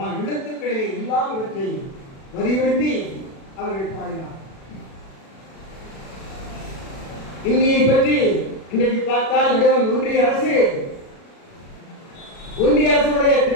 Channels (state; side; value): late; right; 36 ms